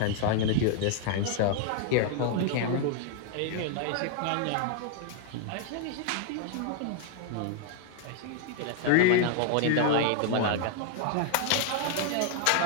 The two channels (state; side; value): different; both; correlation 0.00